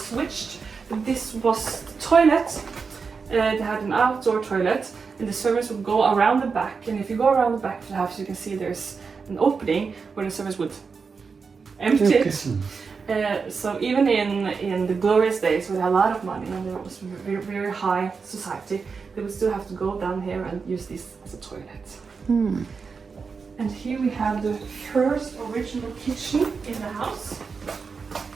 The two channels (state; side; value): quieter; left; 5.2 dB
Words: but this was the toilet. They had an outdoor toilet, and the servants would go around the back. And if you go around the back of the house, you can see there's an opening where the servants would empty it. So even in the glorious days with a lot of money and there was very, very high society, they would still have to go down here and use this as a toilet. And here we have the first original kitchen in the house.